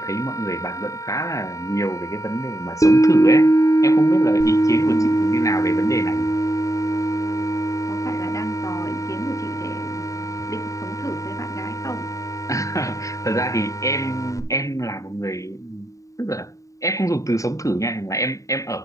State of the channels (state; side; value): late; right; 0.16 ms